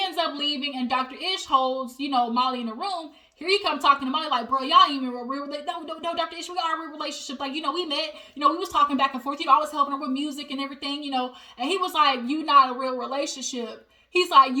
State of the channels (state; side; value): identical; both; correlation 1.00